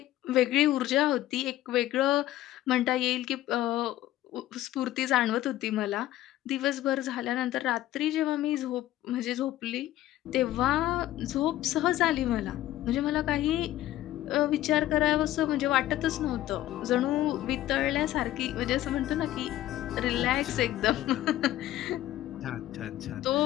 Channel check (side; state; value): right; quieter; 14.4 dB